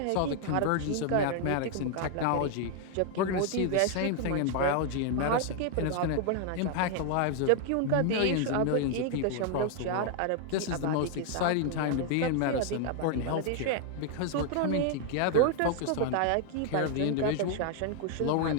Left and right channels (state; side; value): different; both; correlation 0.00